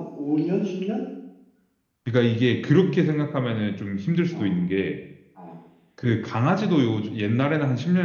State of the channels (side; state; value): both; identical; correlation 1.00